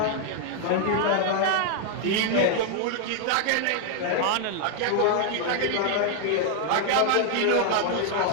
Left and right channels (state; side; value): different; both; correlation 0.00